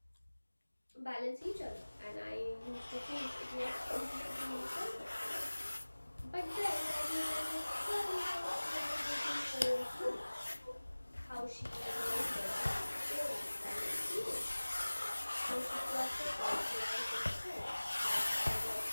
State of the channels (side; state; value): both; inverted; correlation -1.00